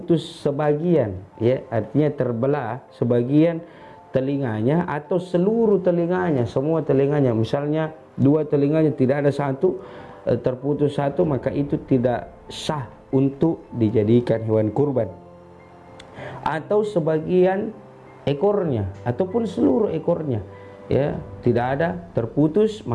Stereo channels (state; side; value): identical; both; correlation 1.00